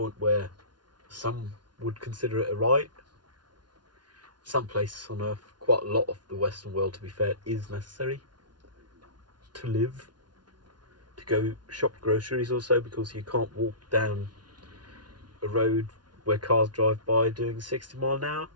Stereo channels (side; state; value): left; late; 0.70 ms